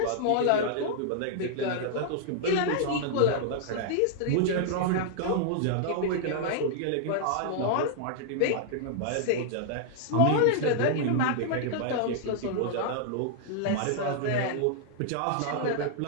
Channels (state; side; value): different; both; correlation -0.01